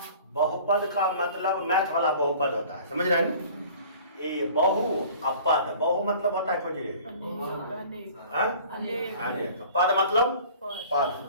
बहुपद का मतलब मैथ वाला बहुपद होता है, समझ रहे हैं ना? ये बहु अपद, बहु मतलब होता है कुछ अनेक, पद मतलब पद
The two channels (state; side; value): inverted; both; correlation -0.47